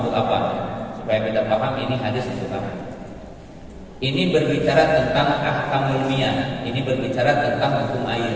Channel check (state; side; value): identical; both; correlation 1.00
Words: apa? Supaya kita paham ini hadis untuk apa. Ini berbicara tentang ahkamul miyah. Ini berbicara tentang hukum air.